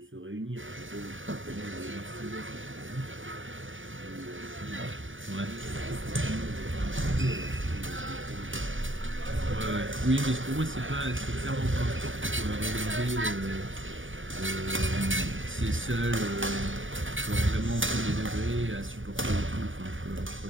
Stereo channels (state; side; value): late; left; 0.57 ms